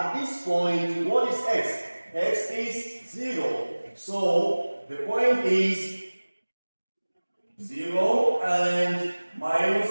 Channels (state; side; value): inverted; both; correlation -1.00